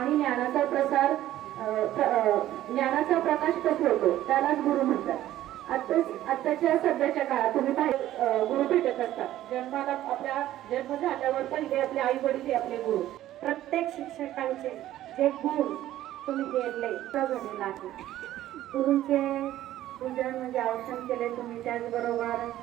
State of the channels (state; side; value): quieter; left; 13.6 dB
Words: ज्ञानाचा प्रकाश पसरवतो. त्यालाच गुरु म्हणतात. आताच्या सध्याच्या काळात तुम्ही गुरु भेटत असतात. जन्माला आपल्या जन्म झाल्यावर पहिले आपले आई वडील हे आपले गुरु. प्रत्येक शिक्षकांचे जे गुण तुम्ही केले झालेला आहे. गुरुंचे पूजन म्हणजे औषण केले तुम्ही. त्याचबरोबर